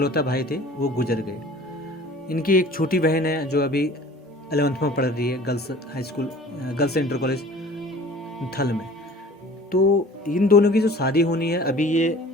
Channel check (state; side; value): normal; both; correlation 0.46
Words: भाई थे वो गुजर गए। इनकी एक छोटी बहन है जो अभी 11th में पढ़ रही है, girls high school, girls inter college थल में। तो इन दोनों की जो शादी होनी है, अभी ये